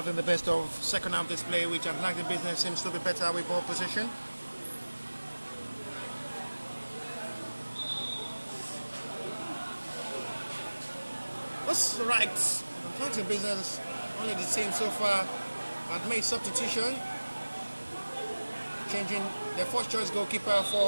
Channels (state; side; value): inverted; both; correlation -1.00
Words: the best of second half display, which Atlantic Business seems to be better with ball position. That's right. Atlantic Business, only the team so far, had made substitution, changing their first choice goalkeeper